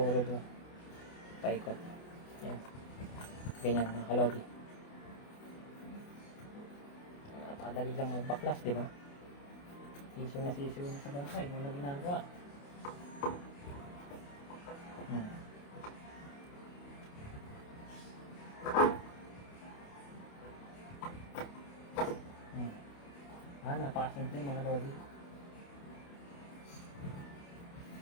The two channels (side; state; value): right; late; 28 ms